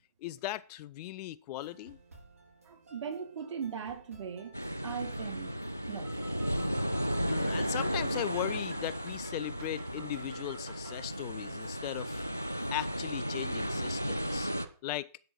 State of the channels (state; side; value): inverted; both; correlation -0.69